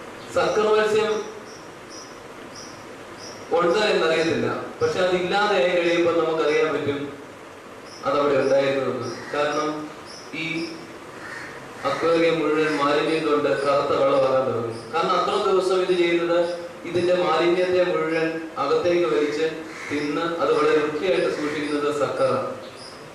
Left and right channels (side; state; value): both; identical; correlation 1.00